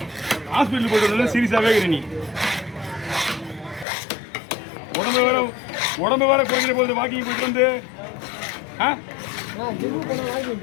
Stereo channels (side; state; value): right; drops out; at 3.9 s